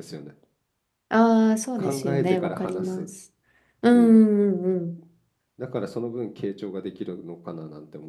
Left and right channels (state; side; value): identical; both; correlation 1.00